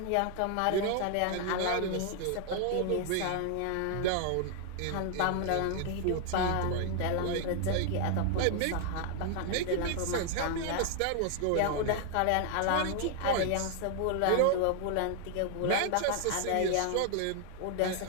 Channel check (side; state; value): both; different; correlation 0.00